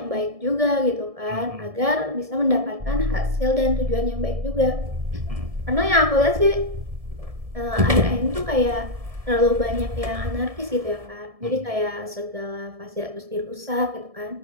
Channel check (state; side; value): late; left; 1.7 ms